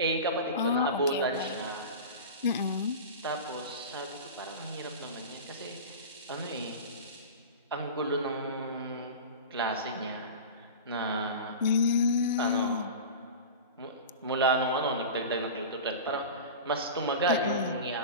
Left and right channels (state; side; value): inverted; both; correlation -0.30